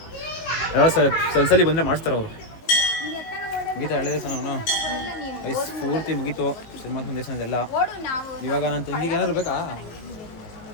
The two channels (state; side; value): late; right; 18 ms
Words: ಎಲ್ಲ ಸಲ್ಸಲಿ ಬಂದರೆ ಮಾಡಿಸ್ತಾರೆ ಅವರು. ಮುಗೀತಾ ಎಳ್ಳೆ ದೇವಸ್ಥಾನ ಅವನು ಐಸ್ ಪೂರ್ತಿ ಮುಗೀತು ಶನಿಮಾತ್ಮ ದೇವಸ್ಥಾನದೆಲ್ಲ. ಇವಾಗ ನನ್ನ ತಂಗಿಗೆ ಏನಾದ್ರು ಬೇಕಾ